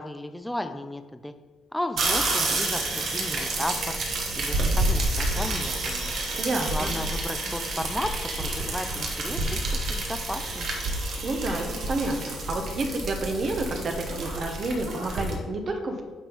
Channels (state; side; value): normal; both; correlation 0.75